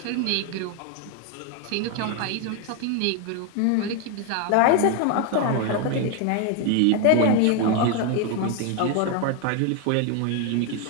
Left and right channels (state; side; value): different; both; correlation 0.01